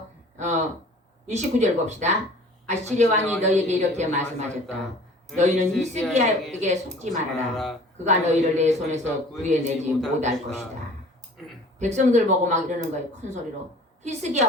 29절 봅시다. 아시리아 왕이 너희에게 이렇게 말씀하셨다. 너희는 히스기야에게 속지 말아라. 그가 너희를 내 손에서 구해내지 못할 것이다. 백성들 보고 막 이러는 거예요. 큰 소리로.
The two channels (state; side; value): normal; both; correlation 0.47